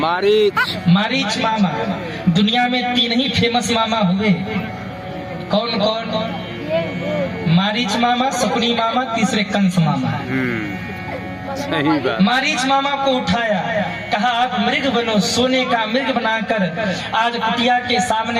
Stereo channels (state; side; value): identical; both; correlation 1.00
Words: मामा। दुनिया में 3 ही फेमस मामा हुए। कौन कौन? मारीच मामा, शकुनी मामा, तीसरे कंस मामा। मारीच मामा को उठाया, कहा आप मृग बनो। सोने का मृग बनाकर आज कुटिया के